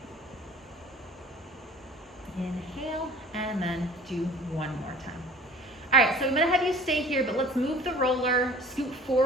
Inhale, and then do 1 more time. All right, so I'm gonna have you stay here, but let's move the roller, scoot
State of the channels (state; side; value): normal; both; correlation 0.46